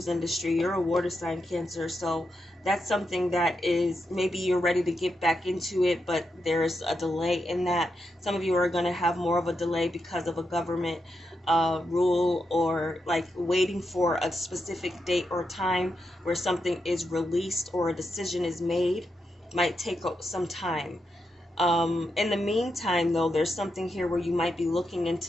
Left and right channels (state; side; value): normal; both; correlation 0.85